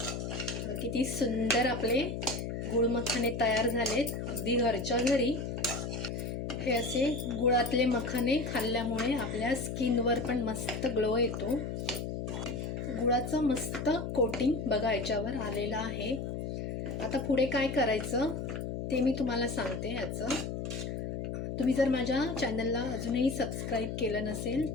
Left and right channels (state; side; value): noise; left; hum, 4 dB below the sound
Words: किती सुंदर आपले गुळ मखाने तयार झालेत अगदी घरच्या घरी. हे असे गुळातले मखाने खाल्ल्यामुळे आपल्या स्किनवर पण मस्त ग्लो येतो. गुळाचं मस्त कोटिंग बघा याच्यावर आलेलं आहे. आता पुढे काय करायचं ते मी तुम्हाला सांगते. ह्याचं तुम्ही जर माझ्या चॅनलला अजूनही सबस्क्राईब केलं नसेल